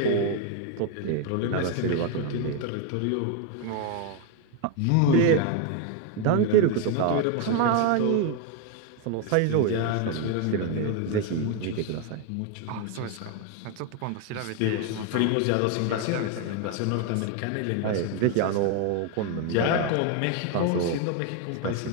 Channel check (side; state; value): both; different; correlation 0.01